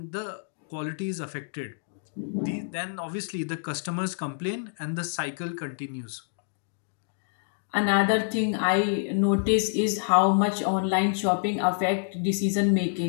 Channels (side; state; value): right; silent; digital silence